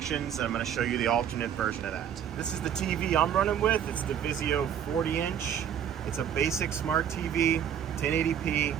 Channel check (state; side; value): quieter; left; 9.1 dB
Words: and I'm gonna show you the alternate version of that. This is the TV I'm running with. It's the Vizio 40-inch. It's a basic smart TV, 1080p,